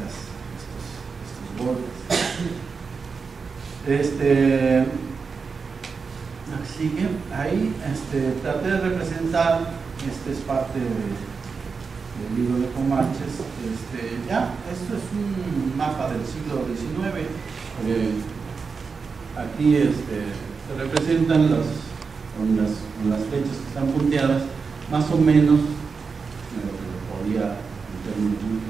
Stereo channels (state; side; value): quieter; left; 5.1 dB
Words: golpes. Sigue ahí, traté de representar, es parte del libro de Comanches, esto es un mapa del siglo XIX, aquí se representan con las flechas que están punteadas, más o menos, lo que podía en términos muy